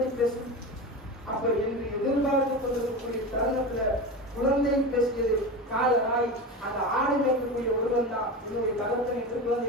பேசும்? அப்ப என்று எதிர்பார்த்து கொண்டிருக்கக்கூடிய தருணத்துல குழந்தை பேசியது காலராய் அந்த ஆடு மேற்கக்கூடிய ஒருவன் தான் என்னுடைய தகப்பன் என்று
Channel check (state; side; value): normal; both; correlation 0.25